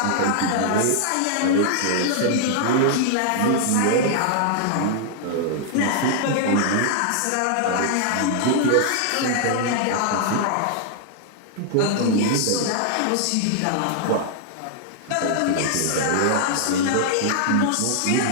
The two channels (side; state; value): both; different; correlation -0.01